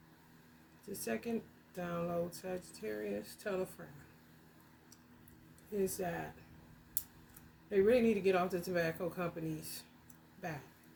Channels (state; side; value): identical; both; correlation 1.00